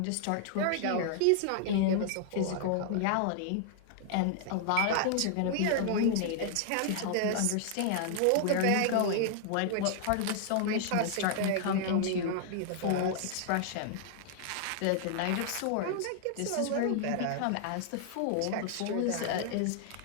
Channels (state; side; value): different; both; correlation -0.01